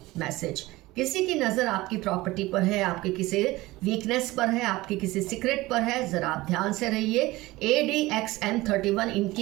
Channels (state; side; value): quieter; left; 19.3 dB